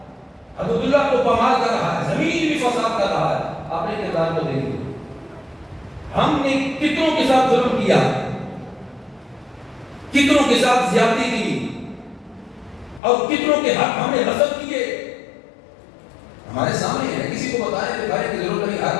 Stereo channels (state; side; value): drops out; right; at 13.0 s